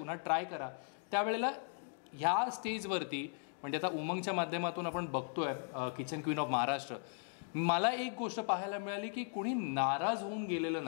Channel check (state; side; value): silent; right; 53 dB below the other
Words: ट्राय करा, त्यावेळेला ह्या स्टेजवरती म्हणजे आता उमंगच्या माध्यमातून आपण बघतोय किचन क्वीन ऑफ महाराष्ट्र, मला एक गोष्ट पाहायला मिळाली की कुणी नाराज होऊन गेलेलं